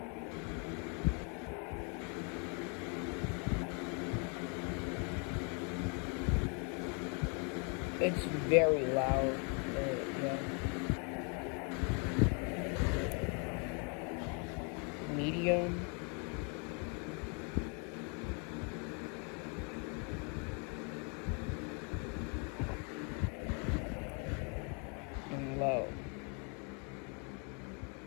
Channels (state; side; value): quieter; right; 36.7 dB